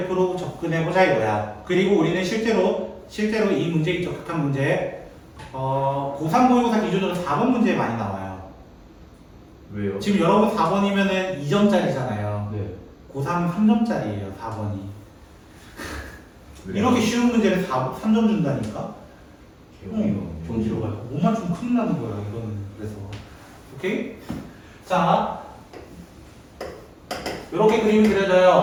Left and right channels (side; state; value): both; identical; correlation 1.00